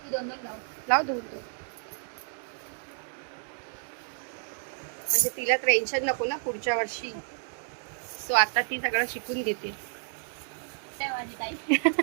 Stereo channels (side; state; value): left; silent; 58 dB below the other